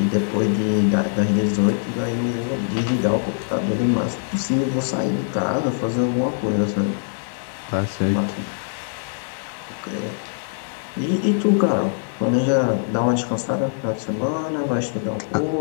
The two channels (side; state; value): right; silent; digital silence